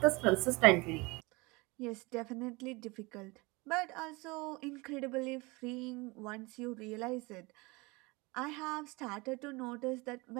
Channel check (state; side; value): quieter; left; 25.0 dB